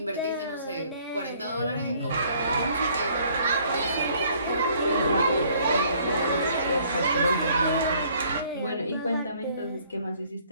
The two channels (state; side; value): inverted; both; correlation -0.61